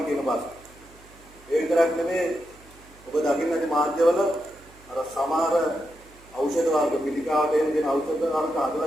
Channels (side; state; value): right; noise; hum, 25 dB below the sound